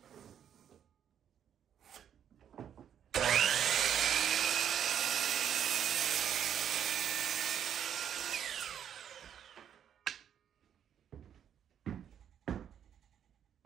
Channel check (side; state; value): left; quieter; 9.1 dB